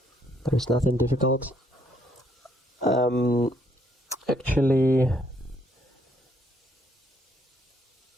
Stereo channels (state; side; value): normal; both; correlation 0.69